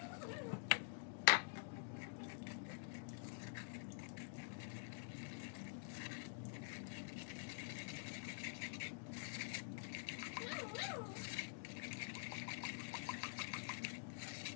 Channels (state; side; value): silent; right; digital silence